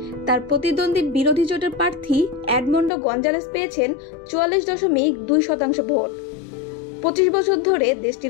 তার প্রতিদ্বন্দ্বী বিরোধী জোটের প্রার্থী এডমন্ডো গঞ্জালেস পেয়েছেন ৪৪.২% ভোট। ২৫ বছর ধরে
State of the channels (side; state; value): right; drops out; at 2.9 s